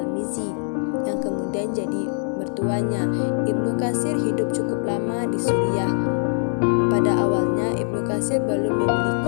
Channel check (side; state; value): right; silent; 56 dB below the other